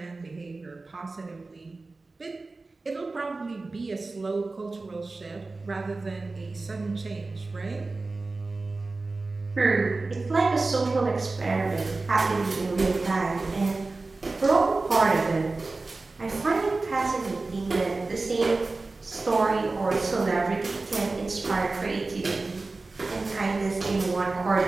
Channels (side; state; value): left; quieter; 3.5 dB